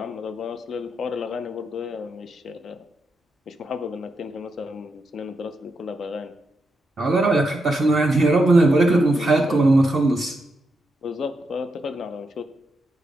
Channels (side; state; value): both; normal; correlation 0.84